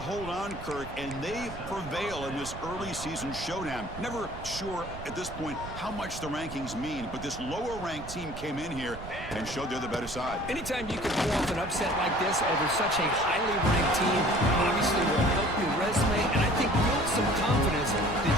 hold on, Kirk, and they prevail in this early season showdown. Never sure at this point how much the rankings mean, but this lower-ranked team came in here and showed they're the better side. Anytime you can pull off an upset like this over such a highly ranked team, obviously will help your resume, and I think build some confidence that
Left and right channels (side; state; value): right; noise; rumble, 12 dB below the sound